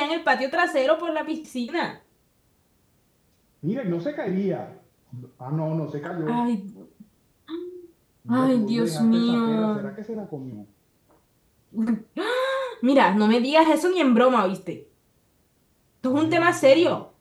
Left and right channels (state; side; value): identical; both; correlation 1.00